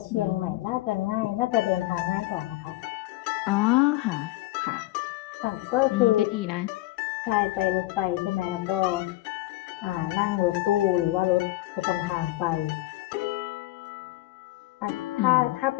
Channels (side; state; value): right; quieter; 17.5 dB